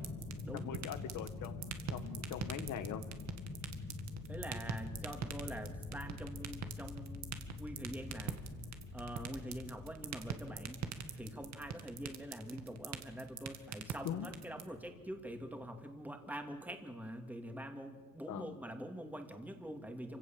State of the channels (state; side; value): normal; both; correlation 0.55